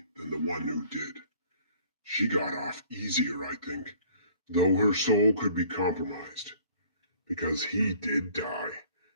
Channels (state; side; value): inverted; both; correlation -0.54